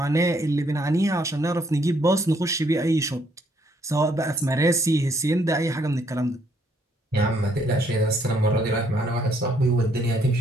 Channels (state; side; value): normal; both; correlation 0.69